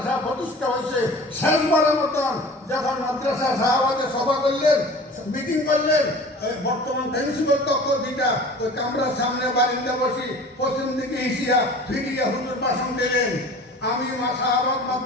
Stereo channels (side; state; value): both; normal; correlation 0.42